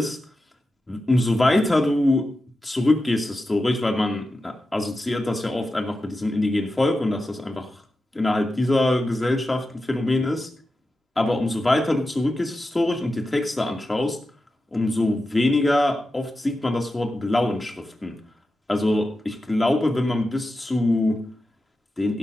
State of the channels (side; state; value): both; normal; correlation 0.91